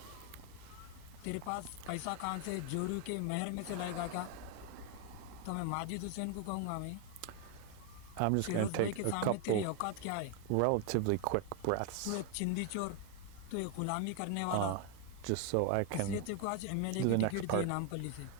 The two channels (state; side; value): different; both; correlation 0.01